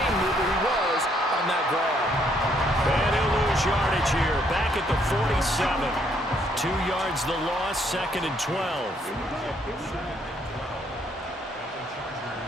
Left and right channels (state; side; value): normal; both; correlation 0.69